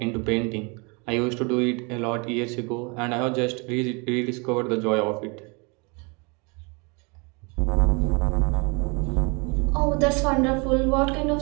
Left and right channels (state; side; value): quieter; left; 30.8 dB